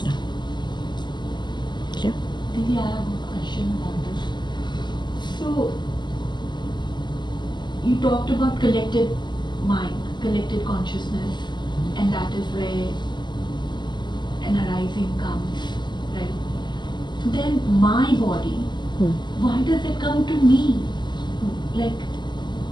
now. Clear? Maybe I have a question on this. So, you talked about collective mind, collective consciousness, and that is where an arising comes, right? Then my body, why does it come to me? Like,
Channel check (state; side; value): late; right; 0.21 ms